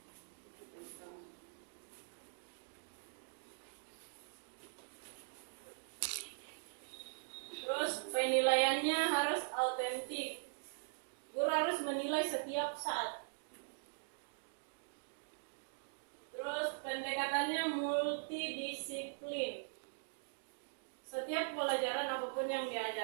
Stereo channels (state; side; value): silent; left; digital silence